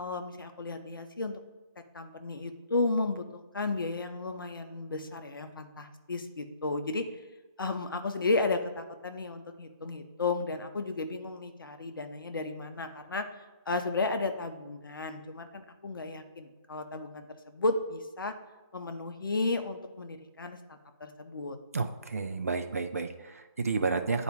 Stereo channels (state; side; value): inverted; both; correlation -0.59